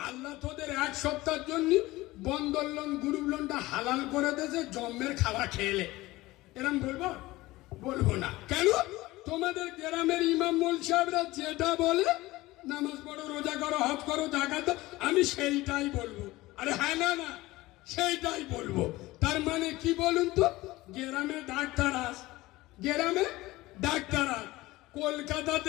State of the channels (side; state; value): right; quieter; 19.0 dB